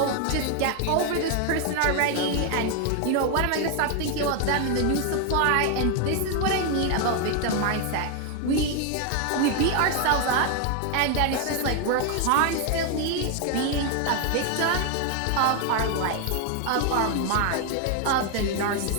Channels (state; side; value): different; both; correlation 0.01